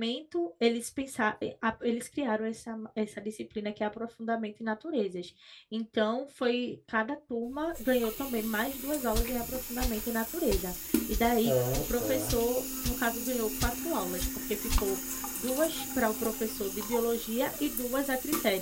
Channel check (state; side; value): identical; both; correlation 1.00